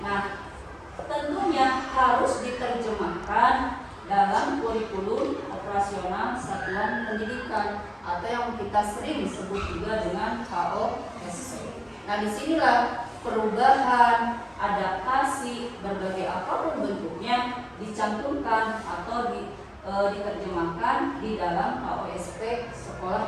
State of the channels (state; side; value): identical; both; correlation 1.00